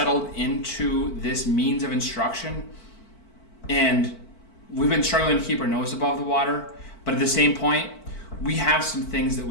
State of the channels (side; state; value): right; late; 4.5 ms